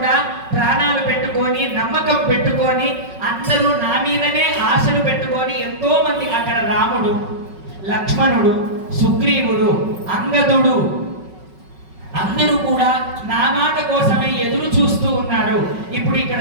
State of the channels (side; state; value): left; late; 5.4 ms